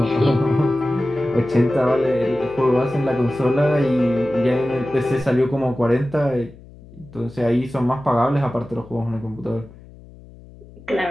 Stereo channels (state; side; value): noise; left; hum, 21 dB below the sound